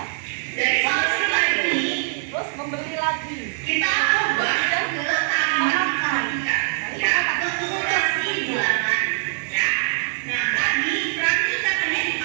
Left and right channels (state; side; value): silent; left; 64 dB below the other